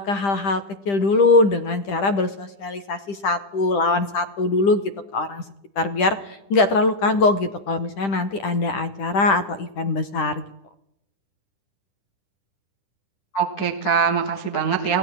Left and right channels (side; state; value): right; late; 10 ms